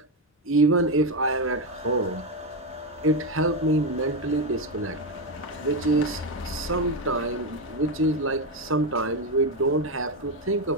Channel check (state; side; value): normal; both; correlation 0.09